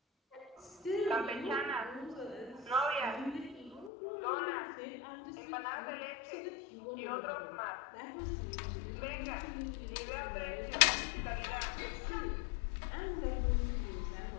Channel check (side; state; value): right; drops out; at 3.9 s